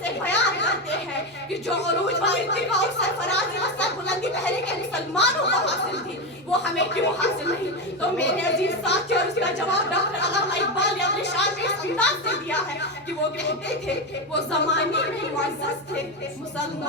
بیان کرتے ہیں کہ جو عروج و ارتقاء اور سرفرازی و سربلندی پہلے کے مسلمانوں کو حاصل تھی وہ ہمیں کیوں حاصل نہیں؟ تو میرے عزیز ساتھیوں، اس کا جواب ڈاکٹر علامہ اقبال نے اپنے شعر میں اس انداز سے دیا ہے کہ وہ کہتے تھے وہ زمانے میں معزز تھے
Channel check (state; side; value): normal; both; correlation 0.13